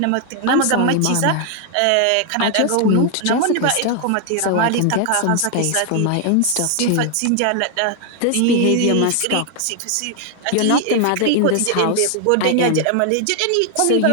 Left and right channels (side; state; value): both; different; correlation 0.00